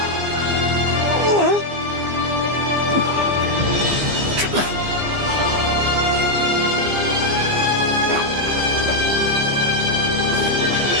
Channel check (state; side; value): late; left; 15 ms